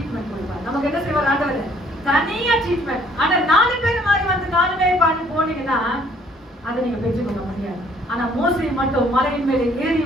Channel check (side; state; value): both; normal; correlation 0.61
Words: கொடுப்பார். நமக்கு என்ன செய்வார் ஆண்டவர்? தனியா ட்ரீட்மெண்ட். ஆனா 4 பேர் மாதிரி வந்து 4 பேர் பாடி போனீங்கன்னா அதை நீங்க பெற்றுக்கொள்ள முடியாது. ஆனா மோசே மட்டும் மலையின் மேலே ஏறி